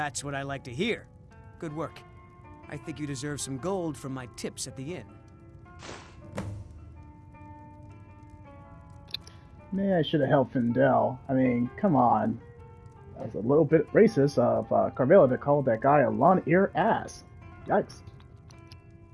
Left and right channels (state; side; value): identical; both; correlation 1.00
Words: what I like to hear. Good work. I think you deserve some gold from my tips at the inn. Maybe I should have helped Findel. I mean, come on. That was a little bit racist of Carvilla to call that guy a long-eared ass. Yikes.